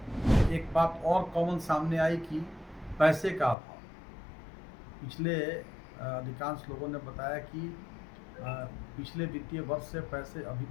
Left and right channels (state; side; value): drops out; right; at 3.6 s